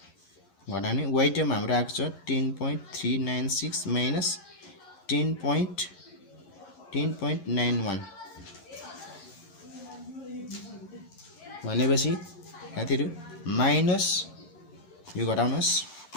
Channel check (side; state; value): right; late; 11 ms